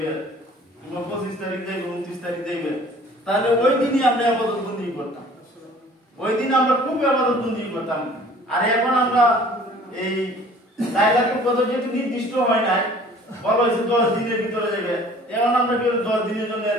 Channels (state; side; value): normal; both; correlation 0.50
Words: কিংবা 25 তারিখ দেবে 29 তারিখ দেবে, তাহলে ওই দিনই আমরা ইবাদত বন্দেগী করতাম, ওই দিন আমরা খুব ইবাদত বন্দেগী করতাম। আর এখন আমরা এই লাইলাতুল কদর যেহেতু নির্দিষ্ট হয় নাই, বলা হয়েছে 10 দিনের ভিতরে যাবে, এখন আমরা কি 10 দিনের জন্য